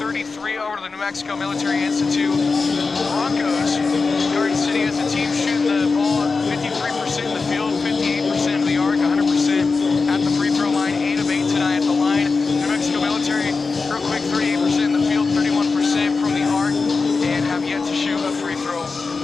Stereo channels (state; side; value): quieter; right; 4.3 dB